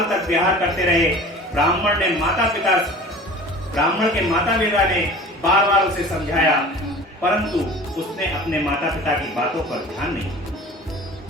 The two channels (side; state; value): both; normal; correlation 0.41